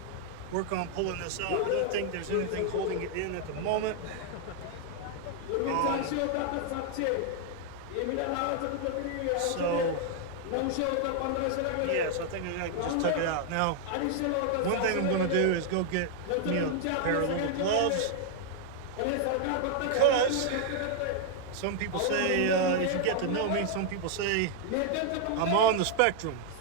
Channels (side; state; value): both; different; correlation 0.00